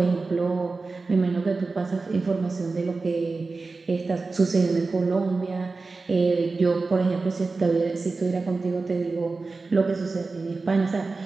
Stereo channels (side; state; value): left; quieter; 3.9 dB